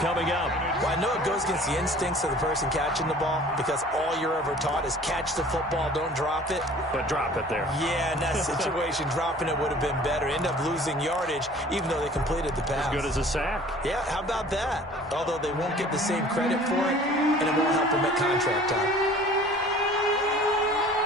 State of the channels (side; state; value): both; normal; correlation 0.48